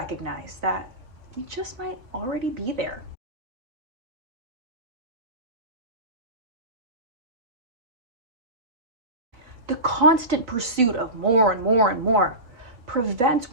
that we just might already be there. The constant pursuit of more and more and more prevents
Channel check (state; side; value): late; left; 4.1 ms